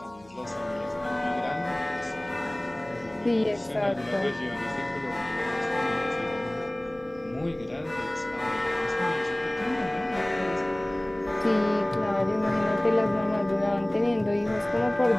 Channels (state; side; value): noise; left; hum, 28 dB below the sound